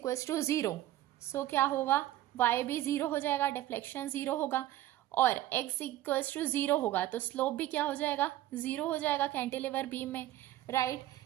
टू जीरो, सो क्या होगा, y भी जीरो हो जाएगा, डिफ्लेक्शन जीरो होगा, और x इक्वल्स टू जीरो होगा तो स्लोप भी क्या हो जाएगा, जीरो हो जाएगा कैंटिलीवर बीम में, राइट।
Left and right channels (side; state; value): left; quieter; 14.5 dB